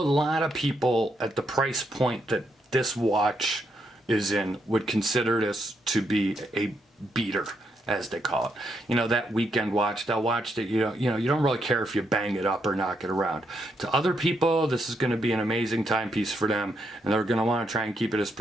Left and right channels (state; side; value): normal; both; correlation 0.78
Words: lot of people at the price point that this watch is in would consider this to be a beater, as they call it. That weekend watch, that watch that you don't really care if you bang it up or knock it around. To other people, this is going to be an amazing timepiece for them, and they're going to want to try and keep it as